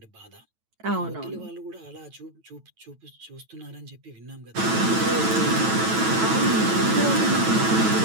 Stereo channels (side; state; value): left; late; 9.1 ms